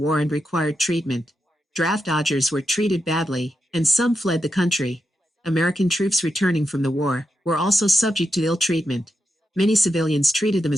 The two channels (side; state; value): both; normal; correlation 0.87